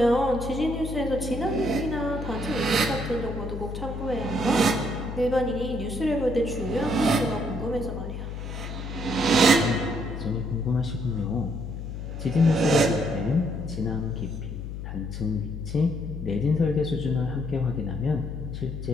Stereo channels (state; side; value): noise; left; hum, 7 dB below the sound